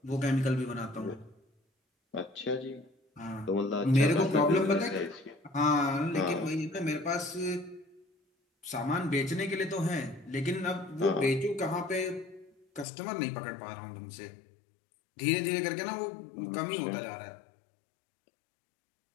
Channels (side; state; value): right; drops out; at 12.9 s